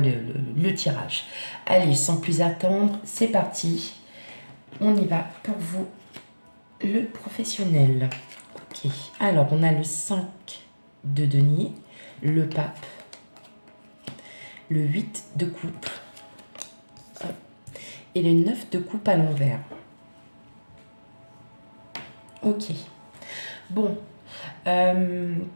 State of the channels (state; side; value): inverted; both; correlation -1.00